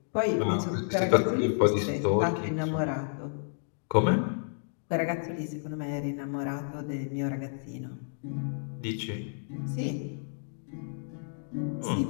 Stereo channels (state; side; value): silent; right; digital silence